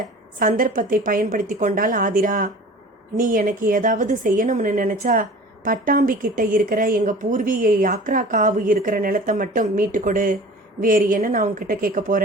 சந்தர்ப்பத்தை பயன்படுத்தி கொண்டாள் ஆதிரா. நீ எனக்கு ஏதாவது செய்யணும்னு நினைச்சா பட்டாம்பி கிட்ட இருக்கிற எங்க பூர்வீக யாக்ரா காவு இருக்கிற நிலத்தை மட்டும் மீட்டு கொடு. வேறு என்ன நான் உன்கிட்ட கேட்க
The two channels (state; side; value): normal; both; correlation 0.42